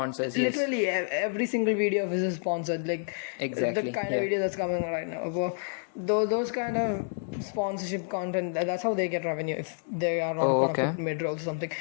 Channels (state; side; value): silent; right; digital silence